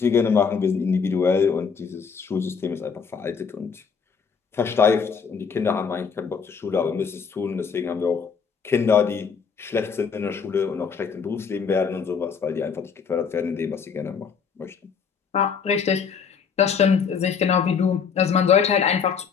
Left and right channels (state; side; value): quieter; right; 6.2 dB